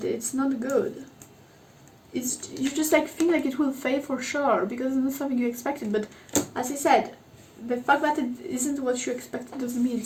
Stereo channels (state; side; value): identical; both; correlation 1.00